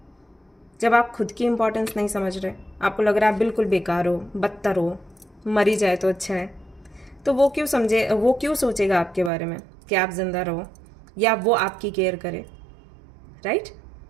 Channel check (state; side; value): drops out; left; at 9.3 s